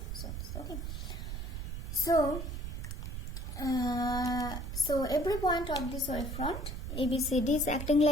zones. Okay, so every point of this wavefront ABCD is acting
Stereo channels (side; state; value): right; noise; rumble, 5 dB below the sound